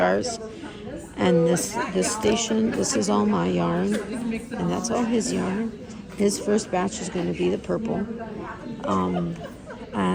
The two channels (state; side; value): identical; both; correlation 1.00